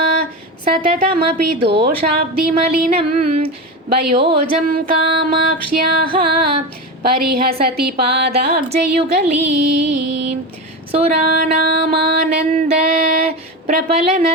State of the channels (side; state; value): both; normal; correlation 0.21